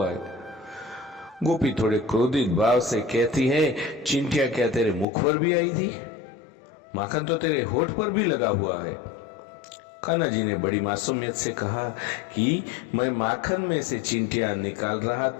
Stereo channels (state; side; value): drops out; right; at 5.1 s